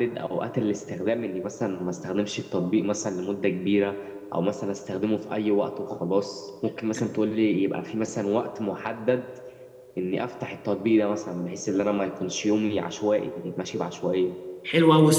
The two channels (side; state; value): both; identical; correlation 1.00